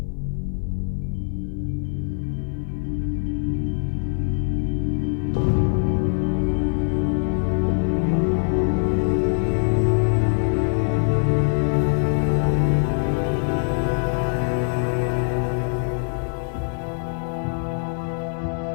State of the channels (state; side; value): silent; right; 63 dB below the other